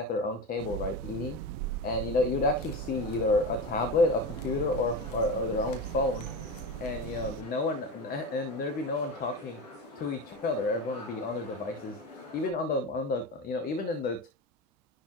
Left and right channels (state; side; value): normal; both; correlation 0.24